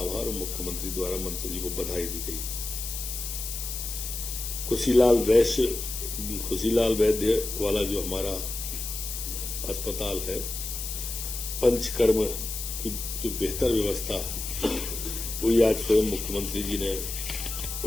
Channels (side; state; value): left; noise; hiss, 6 dB below the sound